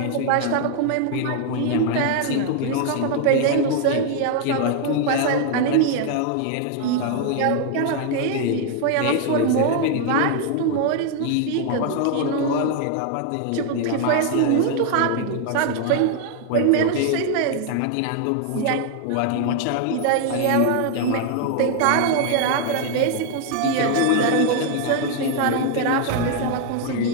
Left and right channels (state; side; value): different; both; correlation 0.00